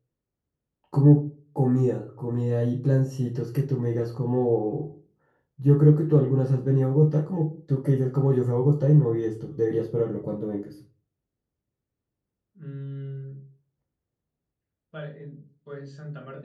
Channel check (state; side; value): identical; both; correlation 1.00